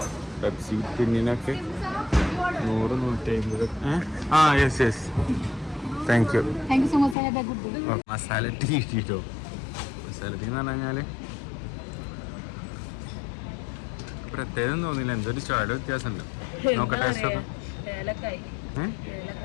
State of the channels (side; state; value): right; drops out; at 7.2 s